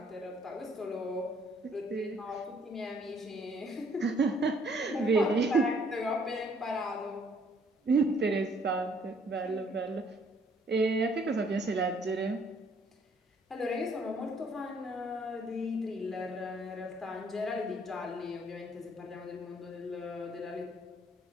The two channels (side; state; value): both; normal; correlation 0.63